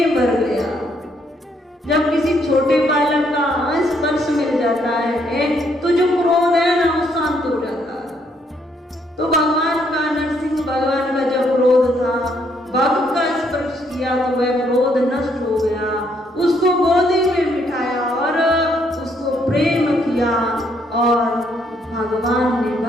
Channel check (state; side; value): normal; both; correlation 0.71